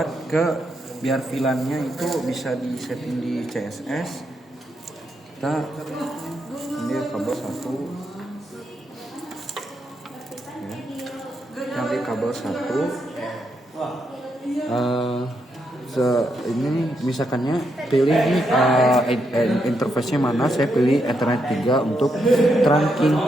biar VLAN-nya itu bisa disetting di CSS, kita ambil kabel 1 ya. Ambil kabel 1 ini misalkannya pilih ini interface-nya mana, saya pilih Ethernet 3 untuk trunking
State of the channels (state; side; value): normal; both; correlation 0.80